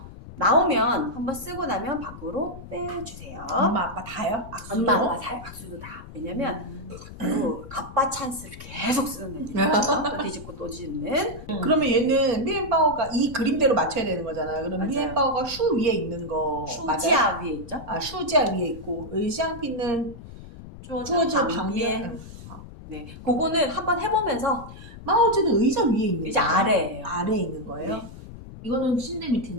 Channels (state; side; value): noise; left; rumble, 15 dB below the sound